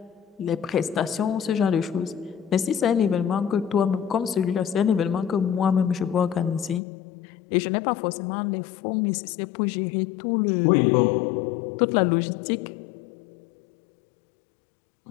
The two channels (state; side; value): drops out; right; at 6.8 s